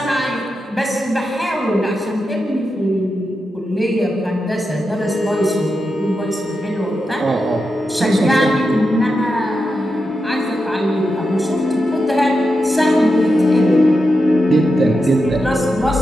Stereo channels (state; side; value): normal; both; correlation 0.88